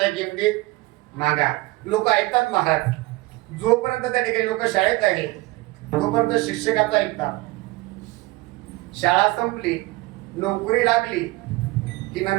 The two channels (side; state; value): left; quieter; 20.9 dB